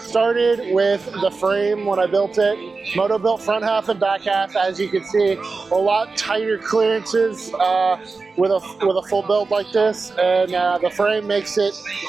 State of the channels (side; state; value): left; quieter; 4.2 dB